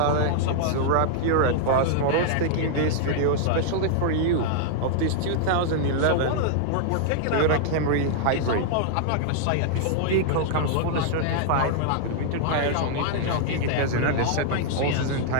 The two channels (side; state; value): both; different; correlation -0.01